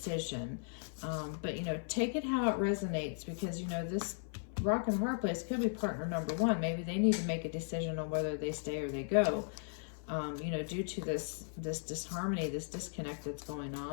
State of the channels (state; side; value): silent; right; 53 dB below the other